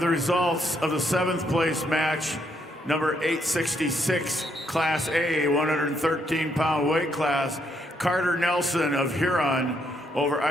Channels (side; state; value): both; normal; correlation 0.75